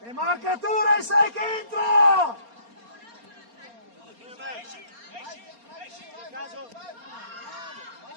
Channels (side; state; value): left; late; 4.3 ms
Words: E marcature, sai che entra!